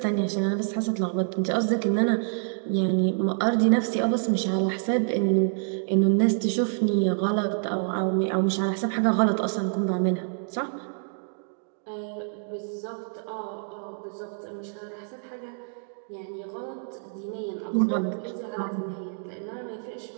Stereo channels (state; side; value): silent; left; digital silence